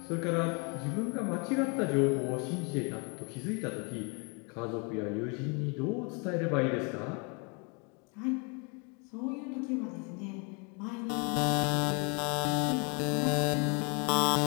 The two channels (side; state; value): right; quieter; 33.6 dB